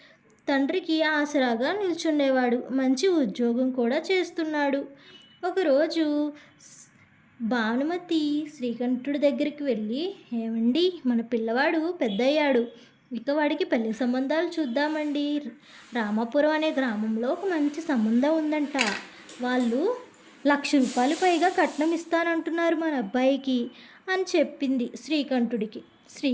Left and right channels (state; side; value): identical; both; correlation 1.00